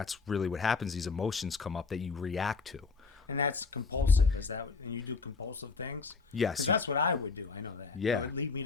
really what happens. These emotions come up that you react to. And that's compulsive. Is that when you do compulsive things? Yes. That's what I would do. I know that. Yeah. It would lead me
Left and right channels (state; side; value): quieter; right; 4.6 dB